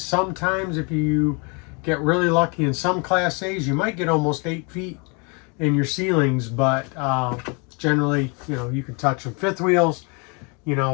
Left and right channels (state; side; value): quieter; right; 32.6 dB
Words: if you get really lucky in some Class A's, you might get almost 8 feet in your ceilings, but generally, you can touch them. Fifth wheels, we